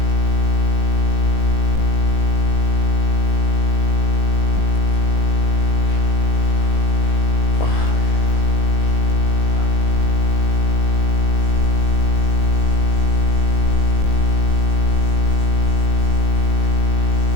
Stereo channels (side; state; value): right; late; 19 ms